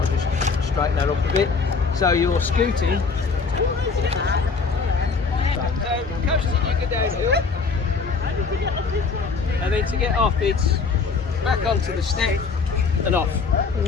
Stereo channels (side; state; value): right; quieter; 4.8 dB